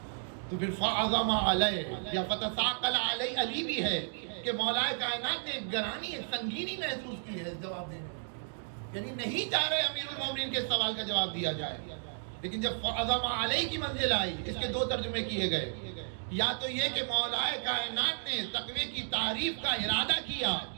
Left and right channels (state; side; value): silent; left; digital silence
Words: تو پھر فعظم علیہ یا فتثاقل علیہ علی بھی ہے کہ مولا کائنات نے ایک گرانی ایک سنگینی محسوس کی ہے اس جواب دینے میں، یعنی نہیں چاہ رہے امیر المومنین کے سوال کا جواب دیا جائے. لیکن جب فعظم علیہ کی منزل آئی، اس کے دو ترجمے کیے گئے. یا تو یہ کہ مولا کائنات نے تقوی کی تعریف کا ارادہ کیا،